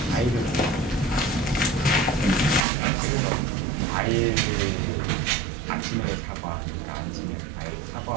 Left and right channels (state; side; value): drops out; left; at 2.7 s